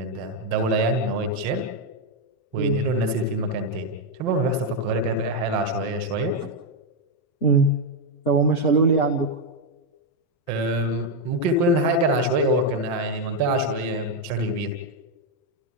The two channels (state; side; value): late; right; 5.8 ms